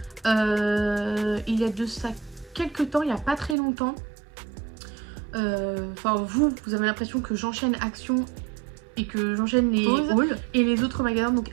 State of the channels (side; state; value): left; drops out; at 3.6 s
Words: Il y a de ça quelques temps, il n'y a pas très longtemps. Enfin vous avez l'impression que j'enchaîne Action et que j'enchaîne les hauls, et les autres magasins, donc